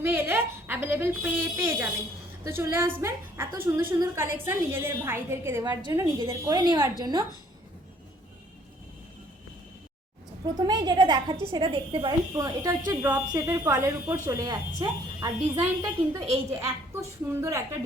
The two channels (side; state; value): both; normal; correlation 0.60